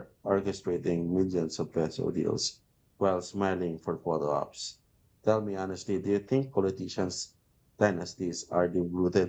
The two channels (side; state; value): both; identical; correlation 1.00